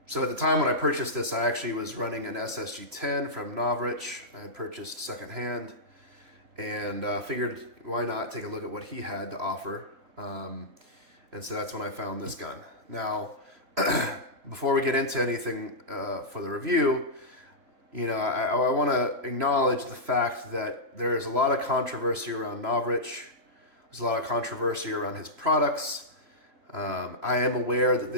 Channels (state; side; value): late; left; 3.0 ms